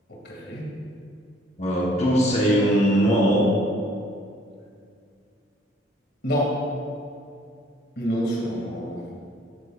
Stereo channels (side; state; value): both; normal; correlation 0.59